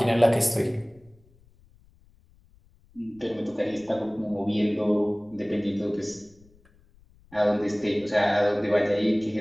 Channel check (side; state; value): left; noise; rumble, 29 dB below the sound